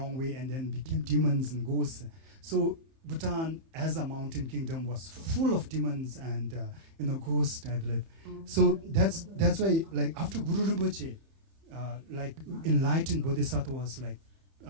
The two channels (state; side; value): late; left; 30 ms